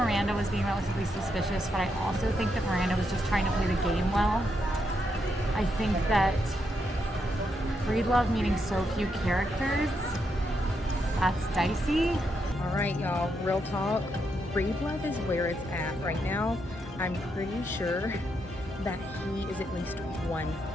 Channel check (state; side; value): normal; both; correlation 0.80